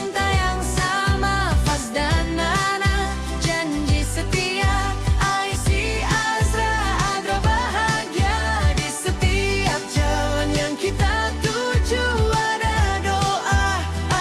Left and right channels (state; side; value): identical; both; correlation 1.00